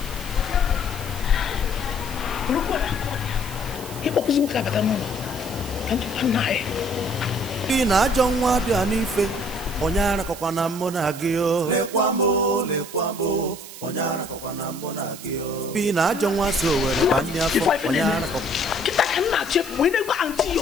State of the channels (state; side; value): noise; right; hiss, 14 dB below the sound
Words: Fino ajọ nwa dị a n'ife onye arakọkwa na mụ na gị o lekwa m onye arakọkwa na mụ na gị o Fino ajọ nwa so were banye afọ onye arakọkwa kita kan na chefu wee na-egwa anti ya